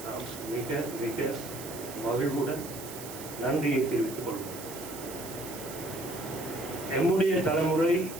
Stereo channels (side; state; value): right; noise; hiss, 12 dB below the sound